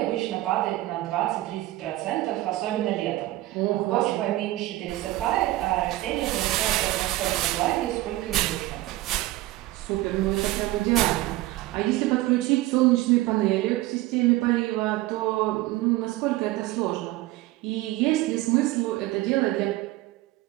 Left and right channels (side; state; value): left; quieter; 17.4 dB